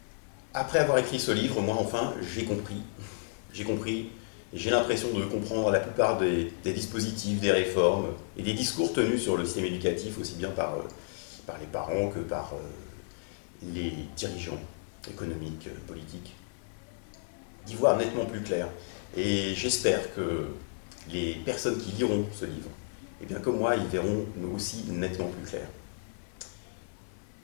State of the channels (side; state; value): right; silent; 56 dB below the other